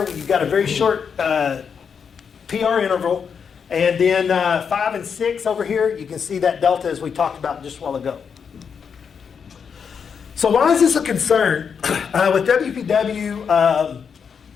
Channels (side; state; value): right; quieter; 6.6 dB